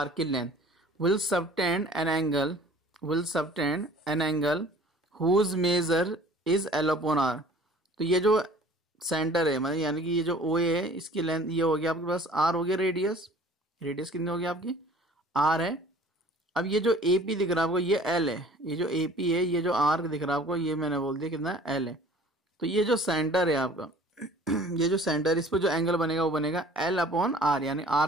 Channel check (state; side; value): normal; both; correlation 0.49